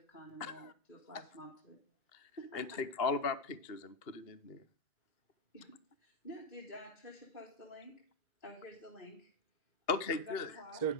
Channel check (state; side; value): late; right; 2.8 ms